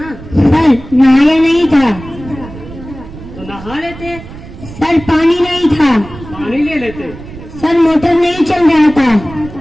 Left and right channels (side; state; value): right; noise; rumble, 15 dB below the sound